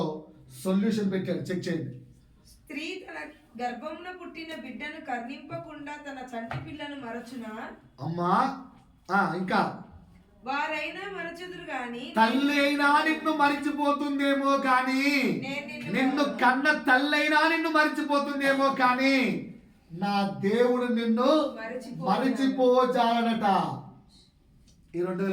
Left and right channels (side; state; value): both; identical; correlation 1.00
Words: సొల్యూషన్ పెట్టాడు. చెక్ చేయండి. స్త్రీ తన గర్భంలో పుట్టిన బిడ్డను కర్ణింపకుండా తన చంటి పిల్లను మరచునా? అమ్మా ఇంకా వారైనా మరచుదురు గాని, తల్లి అయినా నిన్ను మరిచిపోతుందేమో కానీ, నిన్ను కన్న తల్లైనా నిన్ను మరిచిపోతుందేమో కానీ నా దేవుడు నిన్ను మరిచిపోజాలనట. ఈ